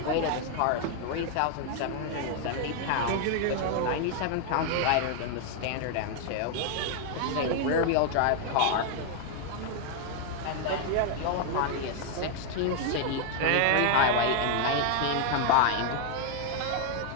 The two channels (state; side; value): different; both; correlation 0.00